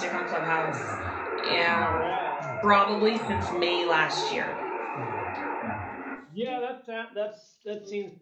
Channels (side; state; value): both; identical; correlation 1.00